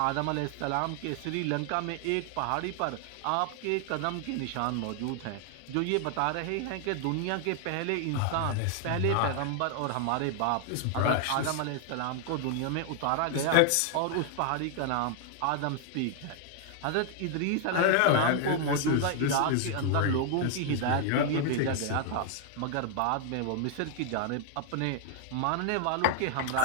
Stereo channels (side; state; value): both; different; correlation 0.00